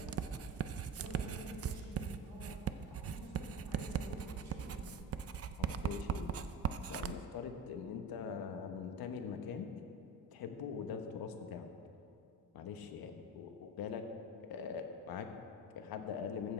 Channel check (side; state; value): both; normal; correlation 0.29